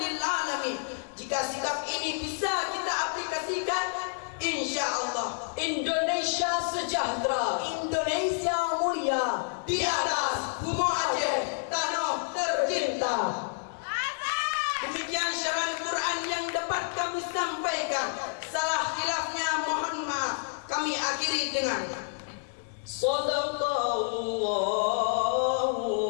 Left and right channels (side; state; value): right; silent; digital silence